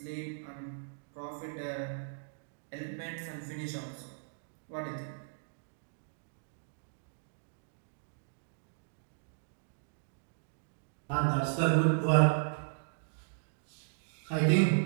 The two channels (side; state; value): left; silent; digital silence